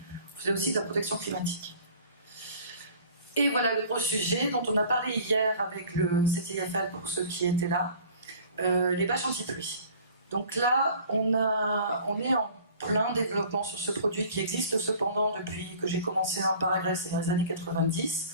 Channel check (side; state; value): both; inverted; correlation -0.47